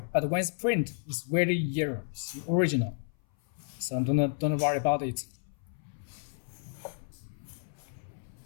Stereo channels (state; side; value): silent; right; 57 dB below the other